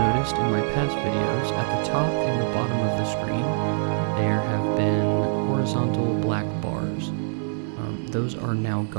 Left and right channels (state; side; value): silent; left; 62 dB below the other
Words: in my past videos, at the top and the bottom of the screen, there have been horizontal black bars. Those are now